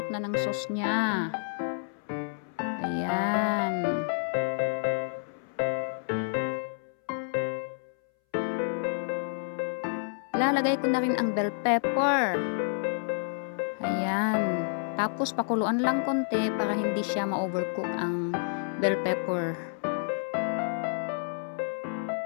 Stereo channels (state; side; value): silent; right; 58 dB below the other